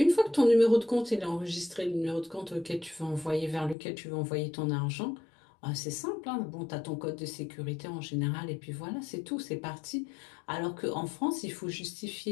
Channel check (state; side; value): drops out; right; at 3.8 s